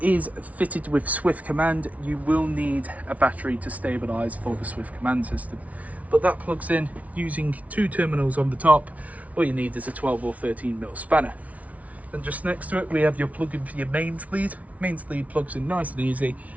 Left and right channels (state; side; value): late; left; 0.069 ms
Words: is fitted with Swift Command. You will need a battery to stabilize for the Swift Command system, but that plugs in using 2 terminals on the top. All you need is a 12 or 13mm spanner. Then just next to it we have your plug-in for your mains lead. Mains lead plugs in nice and easy,